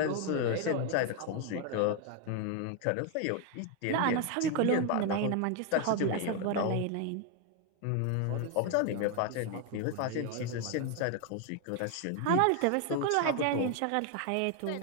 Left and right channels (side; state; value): both; different; correlation 0.01